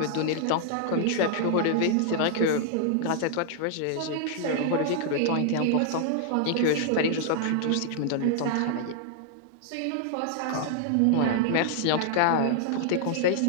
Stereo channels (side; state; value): both; different; correlation -0.01